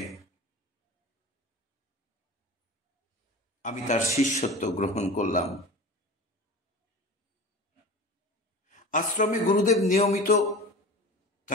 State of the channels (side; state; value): both; normal; correlation 0.34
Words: আমি তার শিষ্যত্ব গ্রহণ করলাম। আশ্রমে গুরুদেব নিয়মিত